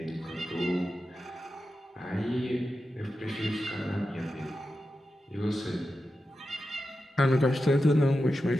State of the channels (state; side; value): normal; both; correlation 0.91